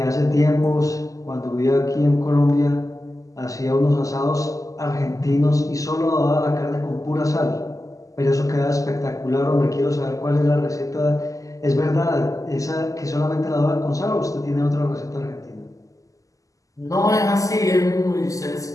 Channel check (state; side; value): late; right; 0.16 ms